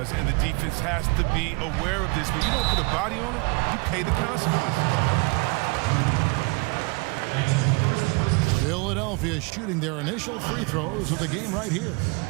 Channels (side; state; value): left; quieter; 29.3 dB